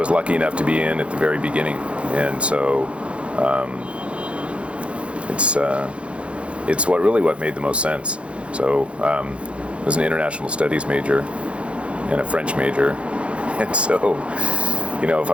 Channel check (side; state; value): left; late; 0.060 ms